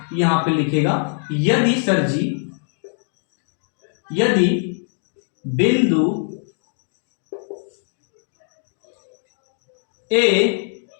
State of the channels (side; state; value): right; silent; digital silence